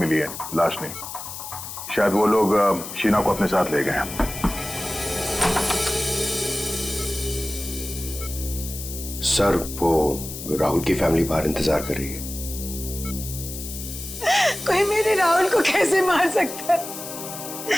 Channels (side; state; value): left; noise; hiss, 9 dB below the sound